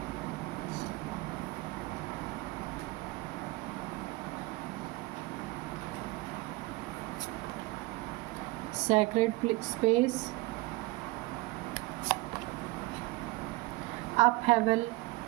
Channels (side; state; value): left; quieter; 22.3 dB